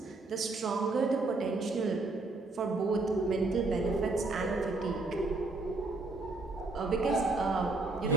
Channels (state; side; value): quieter; left; 3.3 dB